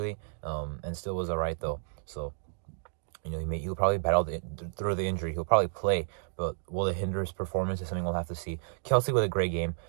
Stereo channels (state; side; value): silent; left; digital silence